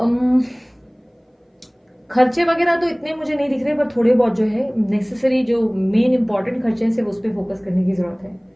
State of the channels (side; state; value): both; identical; correlation 1.00